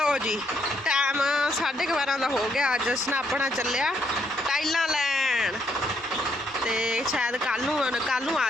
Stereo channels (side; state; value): both; normal; correlation 0.73